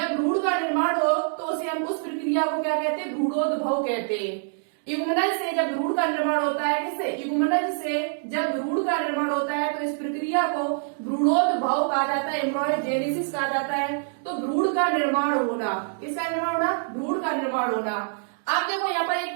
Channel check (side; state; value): left; silent; digital silence